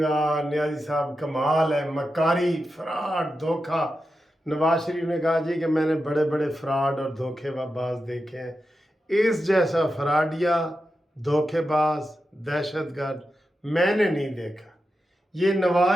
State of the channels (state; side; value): normal; both; correlation 0.90